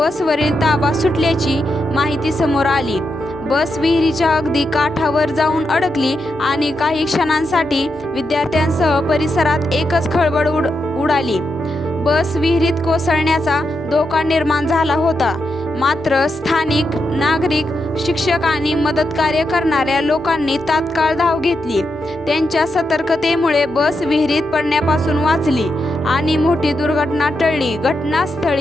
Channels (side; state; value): both; normal; correlation 0.85